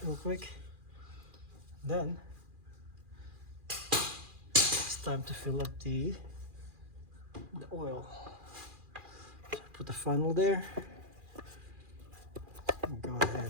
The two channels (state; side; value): late; left; 2.4 ms